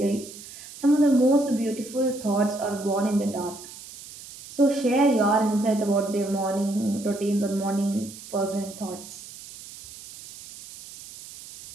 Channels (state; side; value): noise; right; hiss, 16 dB below the sound